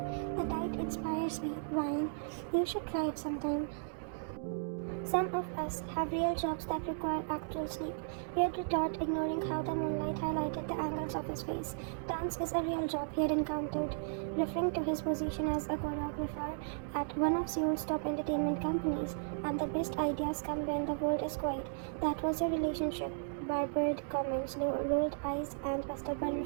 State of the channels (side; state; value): left; silent; digital silence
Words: The night inspires me. Wine. You should try it sometime. Some of us have real jobs that require actual sleep. He had retort, ignoring how the moonlight highlighted the angles of his face. Dance is a real job he had encountered, referring to his position as a choreographer at one of Seoul's top entertainment companies. And the best ideas come when the world is quiet. That was your relationship. Barbered comments, rolled eyes, and a stubborn